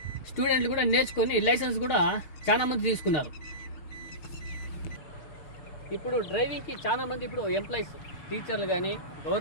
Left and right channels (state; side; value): late; right; 6.5 ms